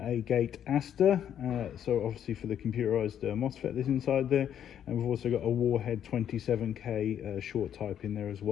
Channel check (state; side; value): quieter; right; 9.6 dB